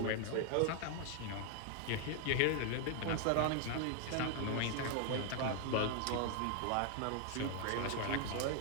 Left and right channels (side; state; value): both; different; correlation 0.00